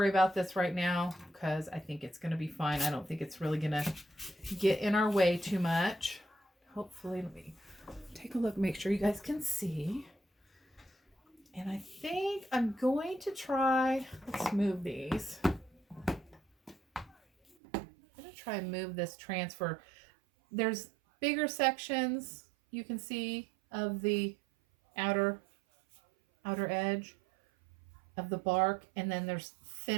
about this right now because I think it's going to be fine. I don't think it's really going to get in our way too much. Hopefully, let me take a look, make sure you guys can see. And I think I'm going to try, let's move these. I'm going to try and move this transfer. There's bigger sections you can see of the outer edge of the bark, and then there's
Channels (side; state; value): left; drops out; at 17.6 s